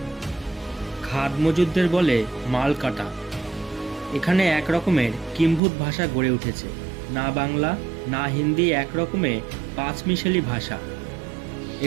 খাদ মজুদদের বলে মাল কাটা। এখানে এক রকমের কিম্ভূত ভাষা গড়ে উঠেছে। না বাংলা না হিন্দি, এক রকমে পাঁচমিশালি ভাষা।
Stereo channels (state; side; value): drops out; left; at 5.6 s